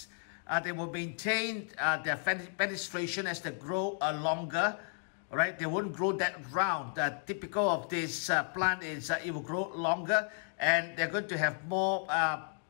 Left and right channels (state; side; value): silent; right; 55 dB below the other